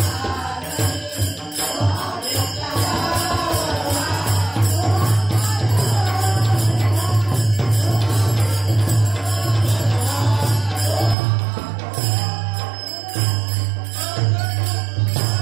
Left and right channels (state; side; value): drops out; left; at 11.2 s